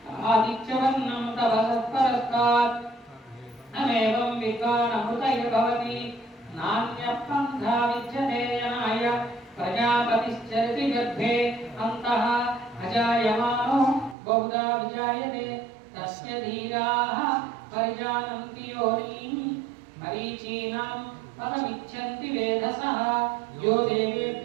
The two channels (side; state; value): left; drops out; at 14.2 s